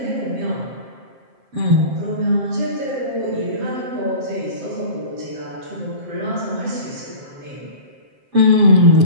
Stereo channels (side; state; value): left; late; 7.6 ms